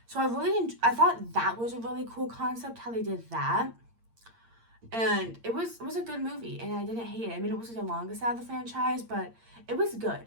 So I thought that was a really cool concept, how they did that. And it was a good movie, and I didn't hate it. I mean, it wasn't the longest out of the franchise, but it was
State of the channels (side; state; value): left; late; 8.7 ms